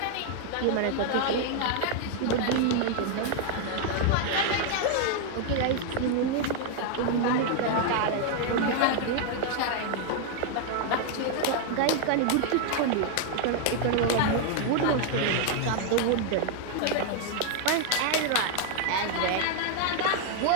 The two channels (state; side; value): different; both; correlation 0.00